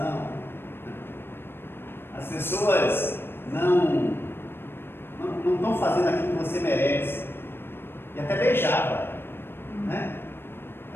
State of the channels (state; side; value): late; right; 0.11 ms